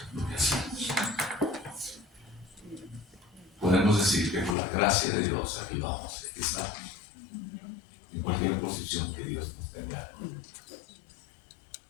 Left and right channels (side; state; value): right; drops out; at 4.5 s